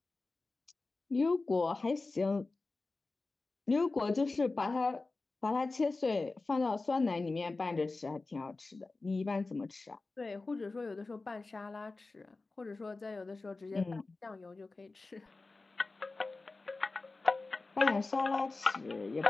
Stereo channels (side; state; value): right; quieter; 3.5 dB